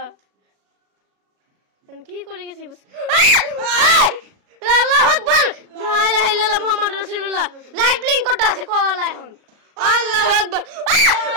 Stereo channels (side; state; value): left; late; 37 ms